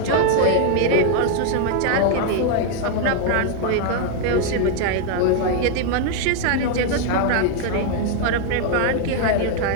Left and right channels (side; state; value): both; different; correlation 0.00